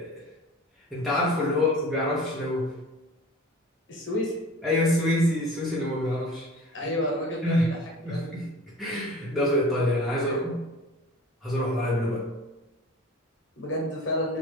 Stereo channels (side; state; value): both; normal; correlation 0.41